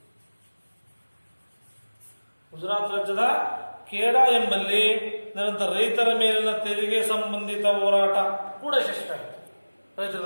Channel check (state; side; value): inverted; both; correlation -1.00